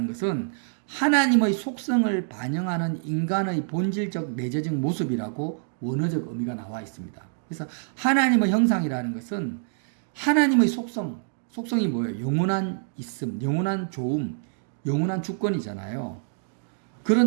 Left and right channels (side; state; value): left; silent; digital silence